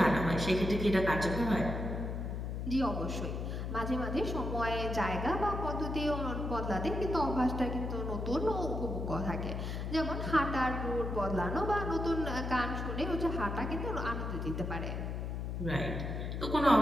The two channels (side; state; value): left; noise; hum, 3 dB below the sound